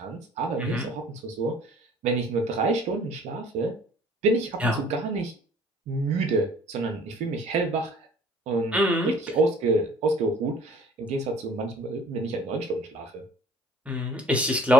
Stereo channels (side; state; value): both; normal; correlation 0.51